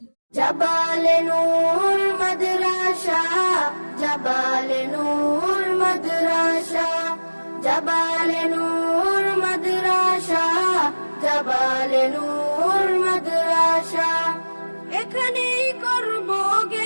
জাবালে নূর মাদ্রাসা, জাবালে নূর মাদ্রাসা, জাবালে নূর মাদ্রাসা, জাবালে নূর মাদ্রাসা। এখানেই করব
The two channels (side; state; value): both; inverted; correlation -1.00